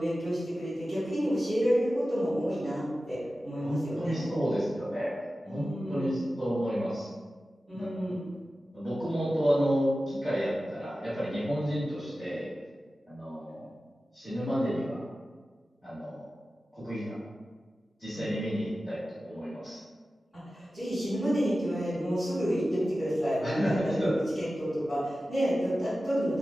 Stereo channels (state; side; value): normal; both; correlation 0.94